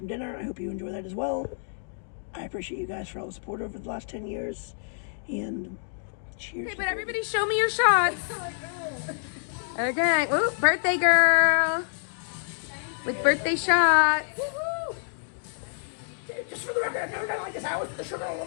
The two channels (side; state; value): right; silent; digital silence